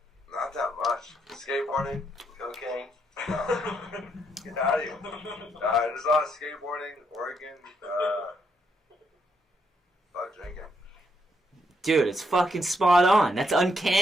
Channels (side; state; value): both; normal; correlation 0.76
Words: Not that much. Skateboarding, cocaine. Get out of here. There's a lot of skateboarding, Oregon. Fuck drinking. Dude, it's fucking spot on. That's